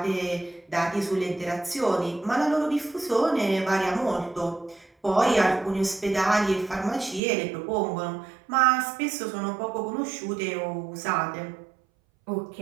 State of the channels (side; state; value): left; drops out; at 7.2 s